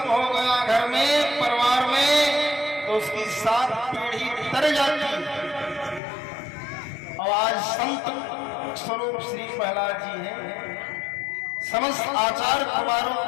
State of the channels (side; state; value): right; drops out; at 6.0 s